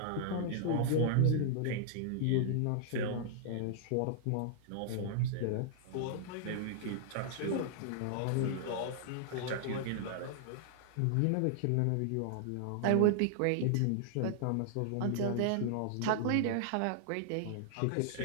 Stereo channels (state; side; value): different; both; correlation -0.01